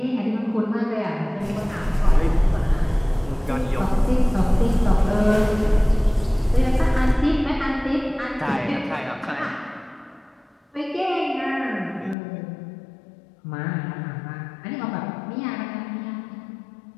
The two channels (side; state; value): right; drops out; at 12.2 s